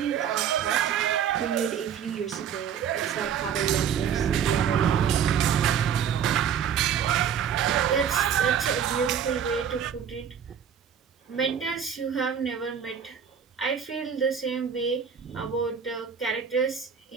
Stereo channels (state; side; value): quieter; left; 8.0 dB